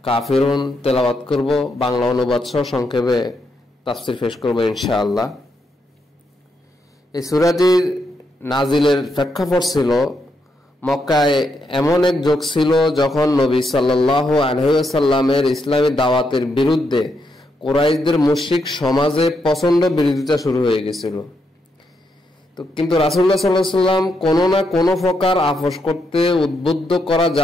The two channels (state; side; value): normal; both; correlation 0.80